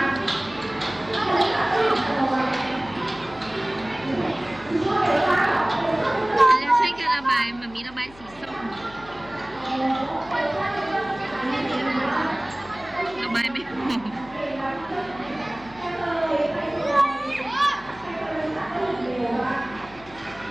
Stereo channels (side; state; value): left; noise; hum, 21 dB below the sound